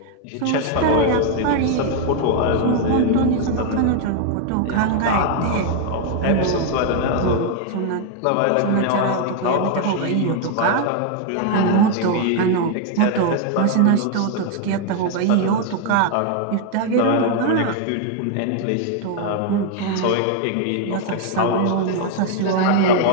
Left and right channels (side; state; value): both; different; correlation 0.00